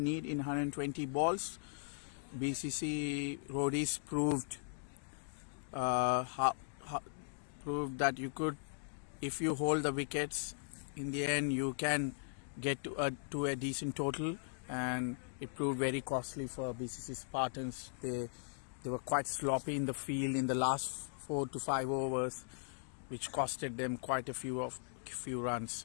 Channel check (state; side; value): silent; right; digital silence